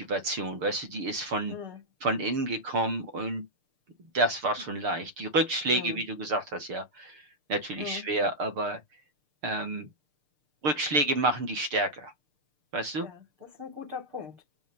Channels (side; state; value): left; late; 6.7 ms